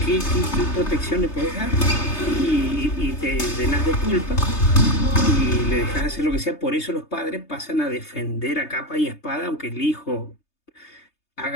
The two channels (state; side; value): late; right; 3.3 ms